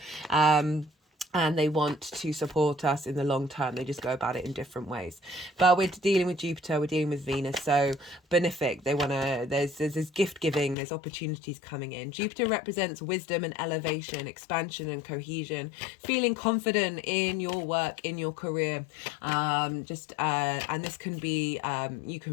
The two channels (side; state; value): right; drops out; at 10.8 s